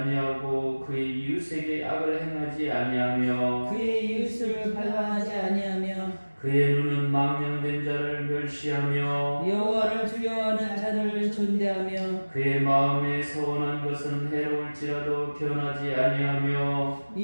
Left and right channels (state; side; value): inverted; both; correlation -1.00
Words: 그의 이웃에게 악을 행하지 아니하며 그의 이웃을 발광하지 아니하며 그의 눈은 망령된 자를 멸시하며 여호와를 두려워하는 자들을 존대하며 그의 마음에 서원한 것은 해로울지라도 변하지 아니하며